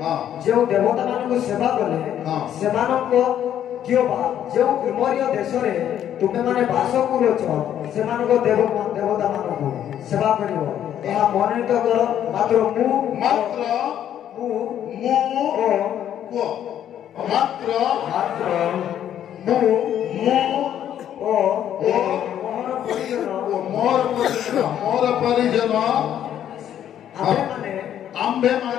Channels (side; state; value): right; quieter; 10.4 dB